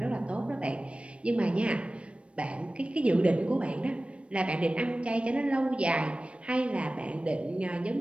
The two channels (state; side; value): late; left; 0.060 ms